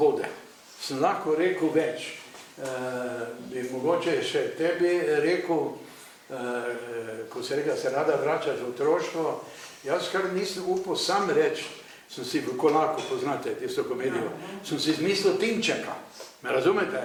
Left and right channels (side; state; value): both; identical; correlation 1.00